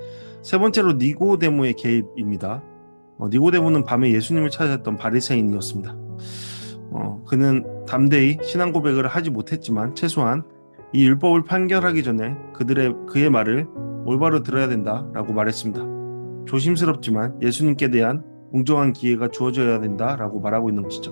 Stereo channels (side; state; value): both; inverted; correlation -1.00